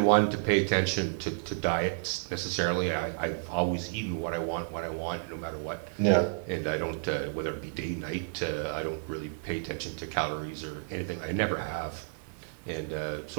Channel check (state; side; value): silent; left; 57 dB below the other